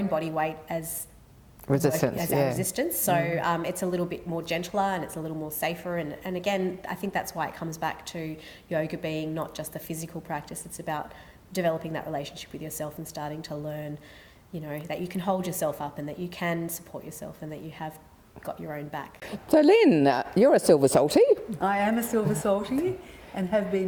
body weight as resistance, our resistance, so it's a little bit more gentler and it's a little more safer, and again I think that's why it comes back to yoga being not just a physical practice, it's about developing that relationship with yourself and starting to learn, you know, that you can hold yourself up and that you can support yourself and that you have got your own back. So Lynn, you're a Silver Salty. I am a Silver Salty and have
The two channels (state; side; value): identical; both; correlation 1.00